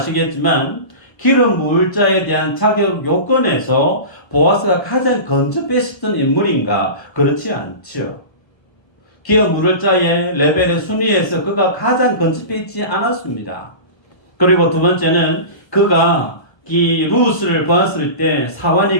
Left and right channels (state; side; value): late; right; 1.3 ms